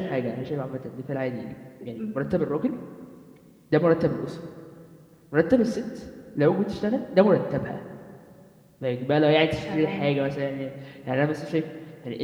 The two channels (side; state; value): both; identical; correlation 1.00